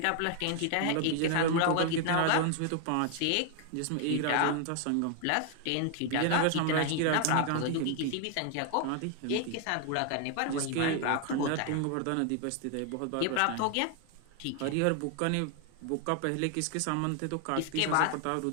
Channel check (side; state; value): both; different; correlation 0.00